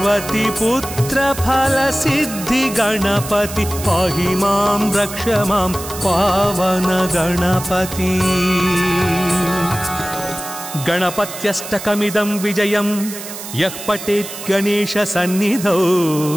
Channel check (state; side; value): noise; right; hiss, 10 dB below the sound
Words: पुत्र फल सिद्धि गणपति पाहि मां रक्ष मां पावन गणपति गणपत्यष्टकमिदं विजयं यः पठेत् गणेश सन्निधौ